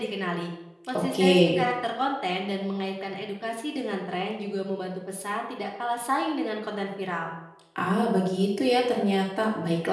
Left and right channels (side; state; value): both; identical; correlation 1.00